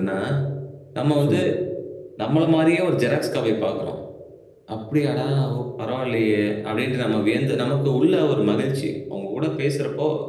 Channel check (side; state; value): both; identical; correlation 1.00